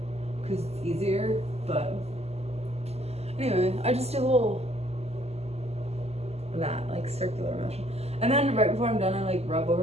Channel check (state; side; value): late; left; 0.30 ms